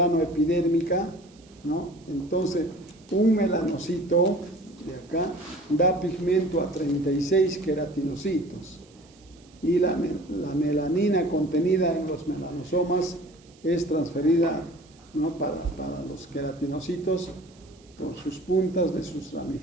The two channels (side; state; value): right; noise; hiss, 29 dB below the sound